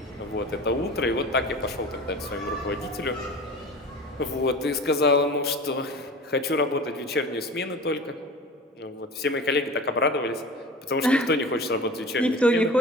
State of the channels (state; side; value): normal; both; correlation 0.36